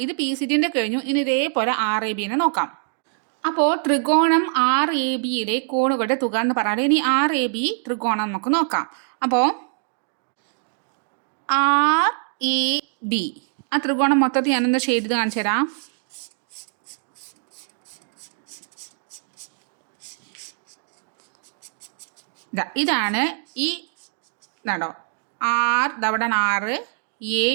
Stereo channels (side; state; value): left; silent; 62 dB below the other